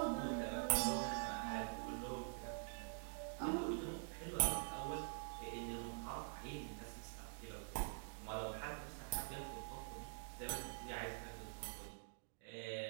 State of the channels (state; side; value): silent; left; digital silence